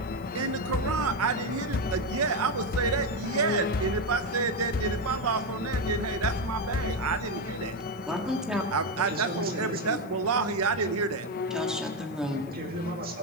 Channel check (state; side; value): noise; left; hiss, 27 dB below the sound